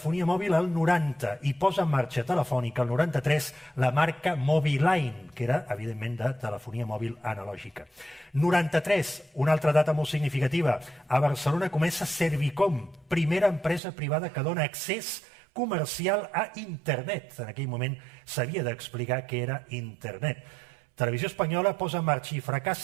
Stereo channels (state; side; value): drops out; left; at 13.8 s